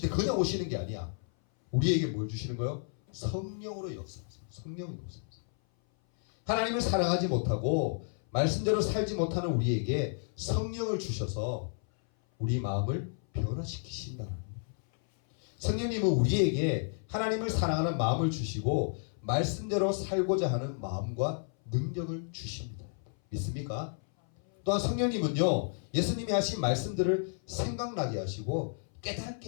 때 그냥 오시는 게 아니야. 우리에게 뭘 주시는 거예요? 성령으로 역사하세요. 성령으로 역사하세요. 하나님을 사랑하지 못하고 말씀대로 살지 못하는 우리에게 성령을 주셔서 우리 마음을 변화시키신다는 거예요. 성령님은 우리에게 하나님을 사랑하는 마음을 주시고 말씀대로 살고자 하는 마음과 능력을 주십니다. 믿습니까? 또한 성령님은요, 예수님이 하신 말씀들을 생각나게 하시고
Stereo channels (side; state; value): right; silent; 57 dB below the other